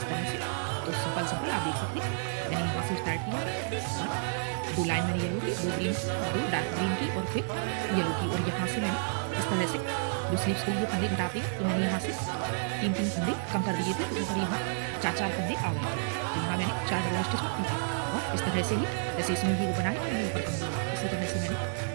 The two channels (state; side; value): silent; left; digital silence